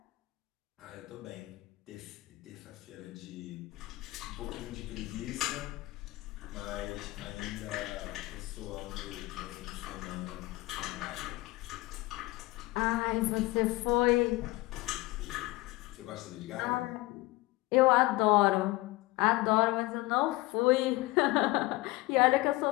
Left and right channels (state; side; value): quieter; right; 20.8 dB